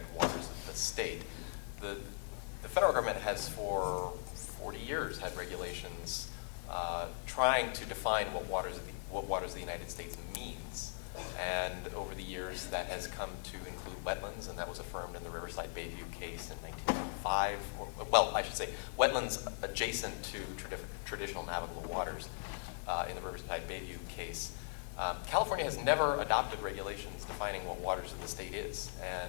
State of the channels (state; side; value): silent; right; 52 dB below the other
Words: waters of the state. The federal government has for 40 years had regulations trying to define what waters of the United States means, and over the years that has come to include wetlands, and that was affirmed in the Riverside Bayview case in 1995. Well, I should say wetlands adjacent to traditional navigable waters in the Riverside Bayview case. California has never adopted regulations defining what waters of the